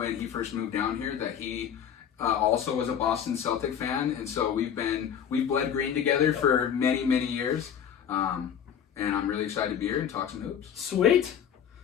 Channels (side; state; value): right; quieter; 8.6 dB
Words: he first moved down here that he also was a Boston Celtic fan, and so we've bled green together for many, many years. And I'm really excited to be here and talk some hoops. Sweet.